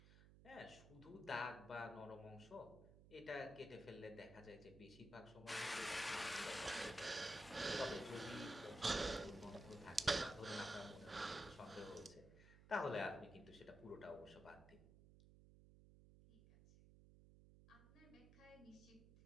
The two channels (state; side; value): noise; right; hum, 19 dB below the sound